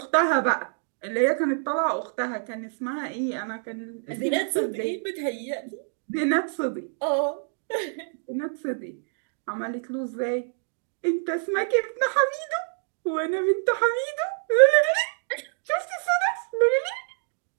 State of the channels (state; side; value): silent; left; digital silence